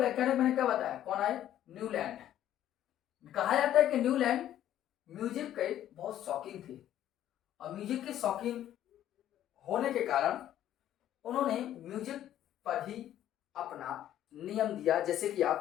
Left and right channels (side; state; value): right; quieter; 11.8 dB